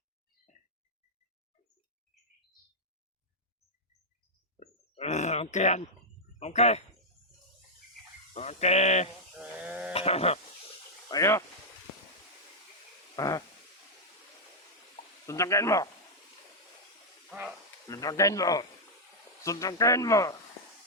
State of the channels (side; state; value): both; normal; correlation -0.04